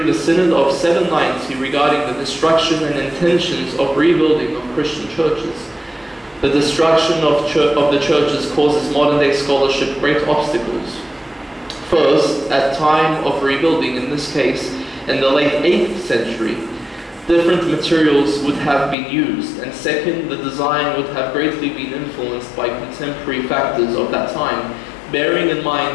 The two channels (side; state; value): right; drops out; at 18.9 s